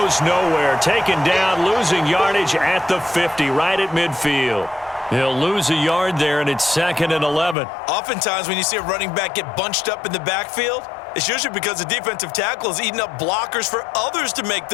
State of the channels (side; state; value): right; drops out; at 7.6 s